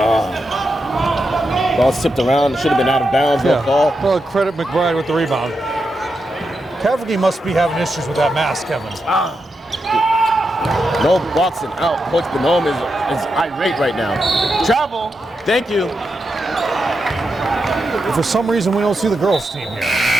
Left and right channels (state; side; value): normal; both; correlation 0.86